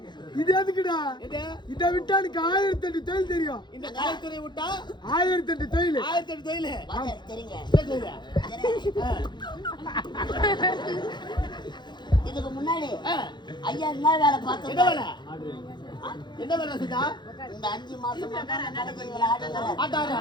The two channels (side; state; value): right; late; 0.21 ms